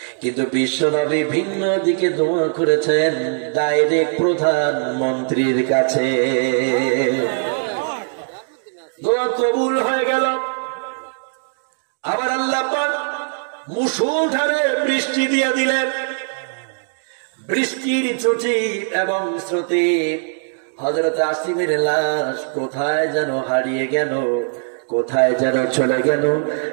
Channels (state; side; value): silent; left; digital silence